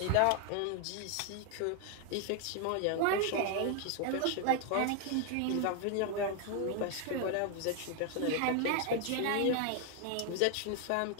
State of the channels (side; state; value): both; different; correlation 0.00